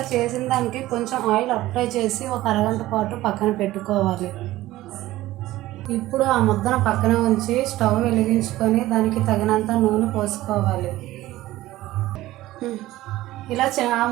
చేసిన దానికి కొంచెం ఆయిల్ అప్లై చేసి ఒక అరగంట పాటు పక్కన పెట్టుకోవాలి. ఇప్పుడు ఆ ముద్దను పక్కన ఉంచి స్టవ్ వెలిగించుకొని దానికి తగినంత నూనె పోసుకోవాలి. ఆ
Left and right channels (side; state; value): left; quieter; 16.4 dB